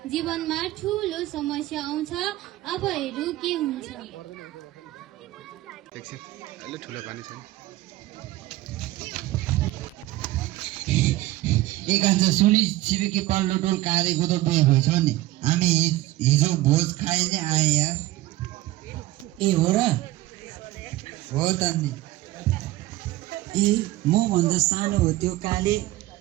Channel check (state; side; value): quieter; left; 17.0 dB